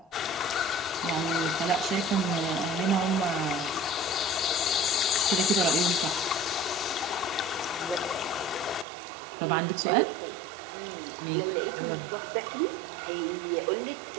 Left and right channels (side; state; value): left; drops out; at 8.8 s